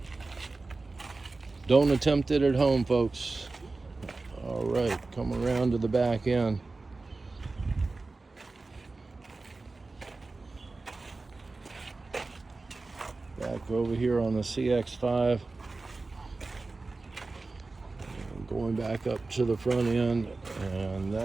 don't attempt it at home, folks. All right, come around to the back end. Back over here on the CX-5. Going back up to the front end, and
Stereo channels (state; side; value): quieter; left; 3.6 dB